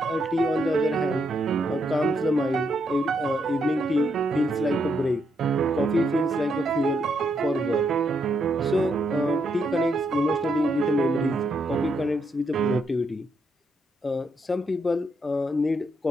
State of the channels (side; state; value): both; normal; correlation 0.78